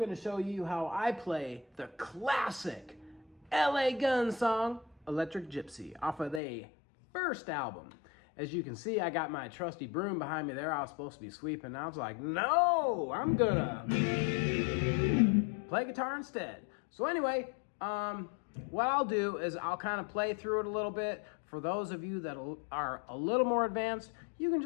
show you how I play the classic LA Gun song, Electric Gypsy, off of their first album. As you can see, I got my trusty broom behind me there. I was supposed to be sweeping. I was like, no, I'm gonna play guitar instead. So anyway, what I'll do is I'll kind of play through it a little bit. For those of you that are a little more advanced, you can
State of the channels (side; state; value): right; drops out; at 6.4 s